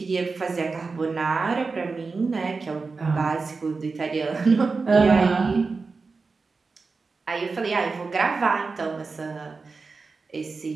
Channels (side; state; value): left; quieter; 4.3 dB